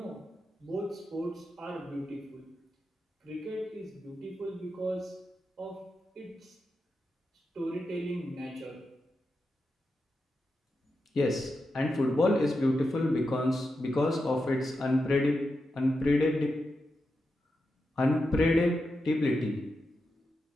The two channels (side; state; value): both; normal; correlation 0.88